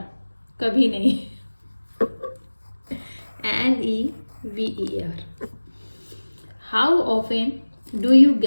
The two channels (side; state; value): both; inverted; correlation -1.00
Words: कभी नहीं। NEVER। How often do you